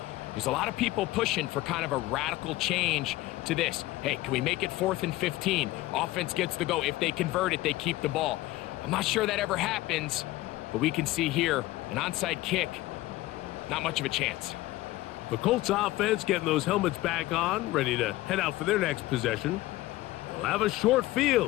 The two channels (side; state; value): right; quieter; 17.6 dB